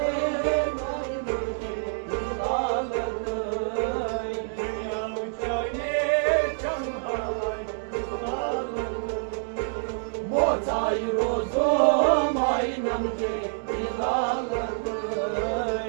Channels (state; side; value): silent; left; digital silence